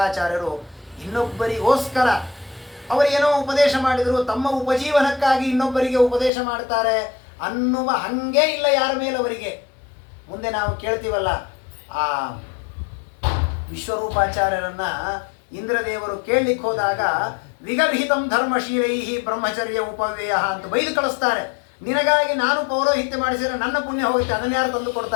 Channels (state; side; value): drops out; right; at 6.3 s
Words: ಇನ್ನೊಬ್ಬರಿಗೋಸ್ಕರ ಅವರೇನೋ ಉಪದೇಶ ಮಾಡಿದರು, ತಮ್ಮ ಉಪಜೀವನಕ್ಕಾಗಿ ಇನ್ನೊಬ್ಬರಿಗೆ ಉಪದೇಶ ಮಾಡ್ತಾರೆ ಅನ್ನುವ ಹಂಗೆ ಇಲ್ಲ ಯಾರ ಮೇಲೆ ಅವರಿಗೆ. ಮುಂದೆ ನಾವು ಕೇಳ್ತೀವಲ್ಲ, ಆ ವಿಶ್ವರೂಪಾಚಾರ್ಯರನ್ನ ಇಂದ್ರದೇವರು ಕೇಳಲಿಕ್ಕೆ ಹೋದಾಗ ವಿಗರ್ಹಿತಂ ಧರ್ಮಶೀಲೈಹಿ ಬ್ರಹ್ಮಚರ್ಯ ಉಪವ್ಯಯ ಅಂತ ಬೈದು ಕಳಿಸ್ತಾರೆ. ನಿನಗಾಗಿ ನಾನು ಪೌರೋಹಿತ್ಯ ಮಾಡಿಸಿದರೆ ನನ್ನ ಪುಣ್ಯ ಹೋಗುತ್ತೆ, ಅದನ್ನು ಯಾರು ತಂದು